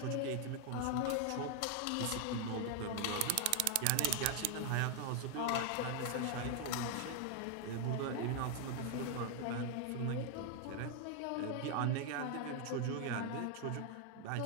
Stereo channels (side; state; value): both; different; correlation 0.00